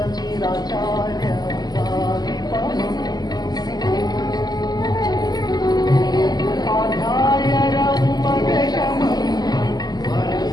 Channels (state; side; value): late; right; 0.20 ms